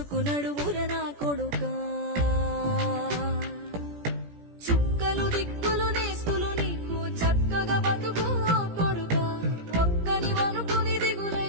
నా కొడుకా. చుక్కలు దిక్కులు నేస్తులు నీకు చక్కగా బతుకు కొడుకా. ఒక్కని వనుకుని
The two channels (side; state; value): left; late; 17 ms